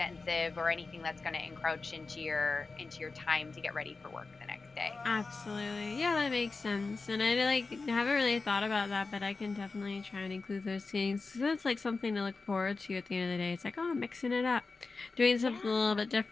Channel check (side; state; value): right; quieter; 4.0 dB